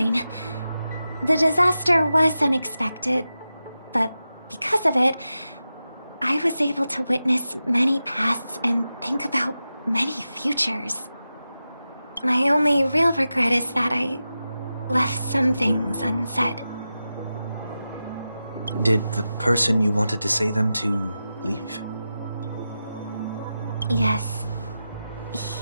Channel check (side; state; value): both; inverted; correlation -0.92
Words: The disaster was unexpected, but because of it, I was able to witness many pasts and think about many futures. My only real regret is that I left some things unsaid. Did the person you wanted to say them to leave? Yes.